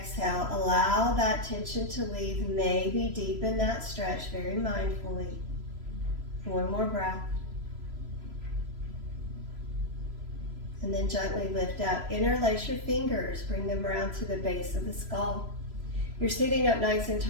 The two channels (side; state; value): left; late; 3.0 ms